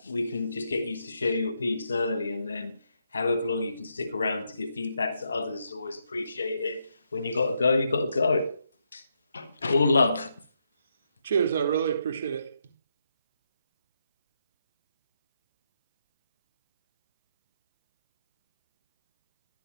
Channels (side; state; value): both; inverted; correlation -0.80